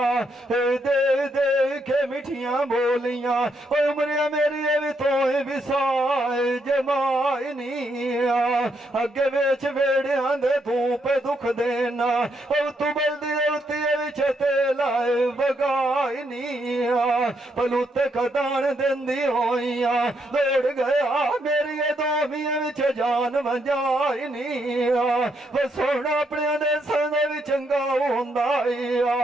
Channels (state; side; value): normal; both; correlation 0.77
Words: दे दे के मिठियां बोलियां उमरिया मेरी भी तो विसाए जमाई नहीं अगे बेच वेड़िया दे तू पे दुख देना तू बल्दी विच लाए बगाई नहीं पलूते खदान देंदी होइया दौड़ गया मेरी दोमिया विच जान वंजाई नहीं सोना अपने देसां दे भी चंगा हुंदा